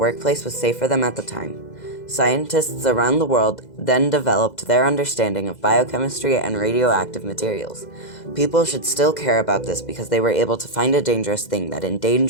was safe for them at the time. Scientists around the world then developed their understanding of biochemistry and radioactive materials. People should still care about this because they were able to find a dangerous thing that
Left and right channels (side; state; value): right; late; 2.0 ms